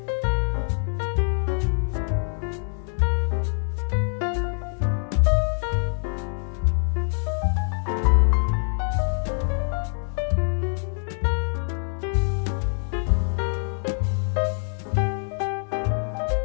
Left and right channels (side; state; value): right; silent; digital silence